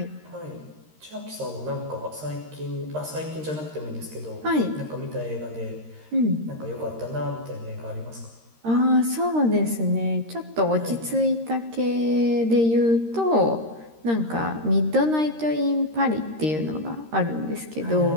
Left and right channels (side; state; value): left; late; 13 ms